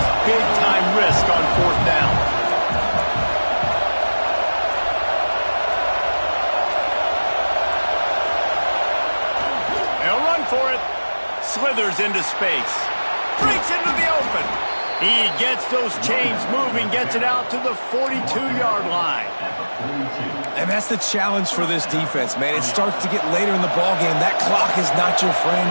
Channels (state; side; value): inverted; both; correlation -1.00